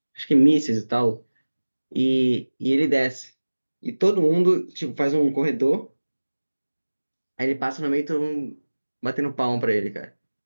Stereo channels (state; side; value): inverted; both; correlation -1.00